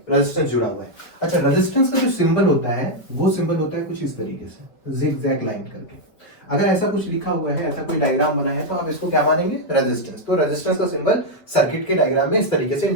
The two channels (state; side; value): late; right; 5.2 ms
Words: रेजिस्टेंस जुड़ा हुआ है। अच्छा, रेजिस्टेंस का जो सिंबल होता है वो सिंबल होता है कुछ इस तरीके से, जिगजैग लाइन करके। अगर ऐसा कुछ लिखा हुआ है, ऐसा कोई डायग्राम बना है, तो आप इसको क्या मानेंगे, रेजिस्टेंस। तो रेजिस्टेंस का सिंबल सर्किट के डायग्राम में इस तरीके से